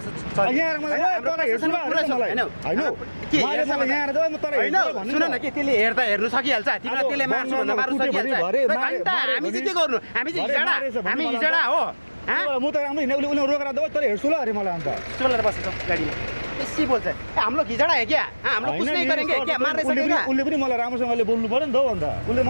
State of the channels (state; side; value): inverted; both; correlation -1.00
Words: यहाँ मलाई तँलाई हेर्छु होइन के यहाँ त म तँलाई होइन सुन न के त्यसले हेर्दा हेर्नु सकिहाल्छ तिमीलाई त्यसले मार्छु भन्दा मार्नु सकिहाल्छ हामी चाहिँ के गर्नु हामी चाहिँ हिजडा हो म त राम्रो हिँड्ने उसले रोकेर दो तँले हेर्छु ल अरे मलाई अन्त चलेर बसेछ गाडीमा बेसी बोल्छ हम लोग हिजडा है क्या हम लोग कुछ नहीं करेंगे क्या मार्ने सकेगा उसले पनि मलाई राम्रोसँगले बोल्नु पर्यो नि त अन्त उसले